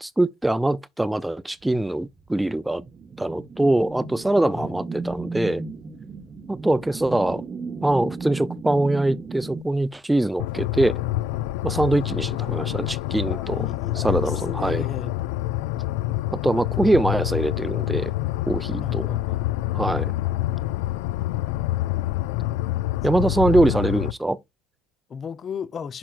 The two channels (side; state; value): both; normal; correlation 0.72